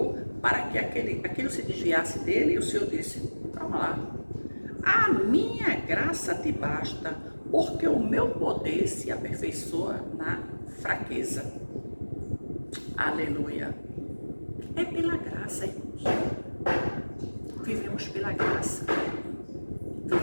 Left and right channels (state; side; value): inverted; both; correlation -1.00